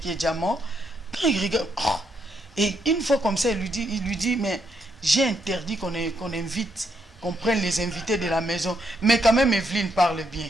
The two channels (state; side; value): normal; both; correlation 0.77